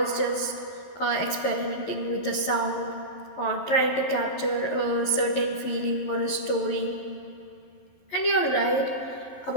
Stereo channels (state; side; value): late; right; 12 ms